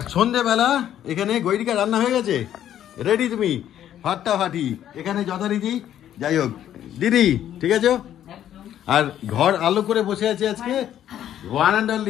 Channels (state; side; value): quieter; right; 11.0 dB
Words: সন্ধেবেলা এখানে গৈরিকা রান্না হয়ে গেছে, রেডি তুমি ফাটাফাটি এখানে যথারীতি। যাই হোক দিদি, ঠিক আছে। আর ঘর আলো করে বসে আছে আজকে ওয়ান অ্যান্ড